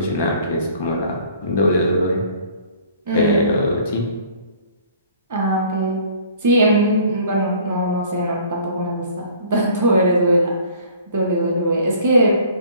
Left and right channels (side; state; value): both; inverted; correlation -0.53